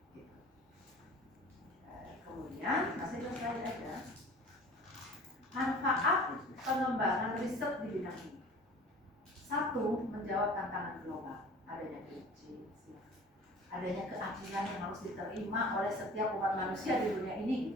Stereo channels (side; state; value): both; normal; correlation 0.43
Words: Gitu. Kemudian masih ke slide aja. Manfaat pengembangan riset di bidang ini. 1, menjawab tantangan global, adanya krisis, adanya keadilan yang harus diterima oleh setiap umat manusia di dunia ini